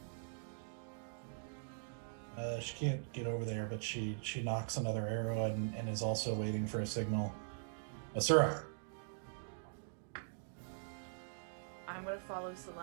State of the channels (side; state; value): left; silent; digital silence